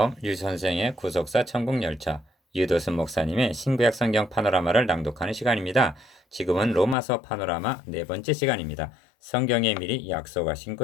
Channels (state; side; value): drops out; right; at 7.0 s